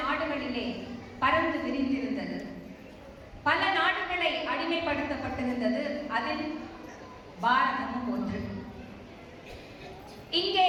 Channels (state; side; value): identical; both; correlation 1.00